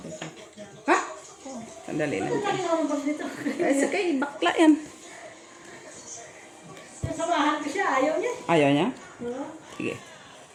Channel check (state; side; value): identical; both; correlation 1.00